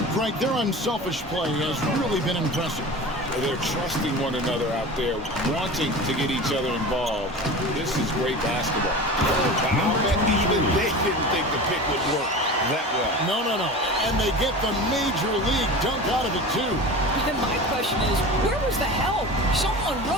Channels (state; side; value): normal; both; correlation 0.33